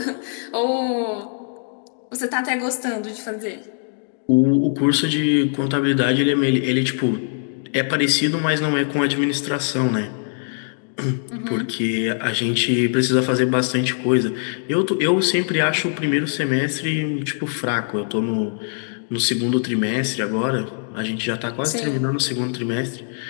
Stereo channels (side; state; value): right; silent; digital silence